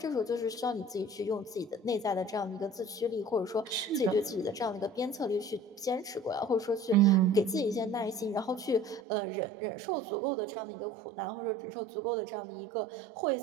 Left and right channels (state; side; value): drops out; left; at 9.0 s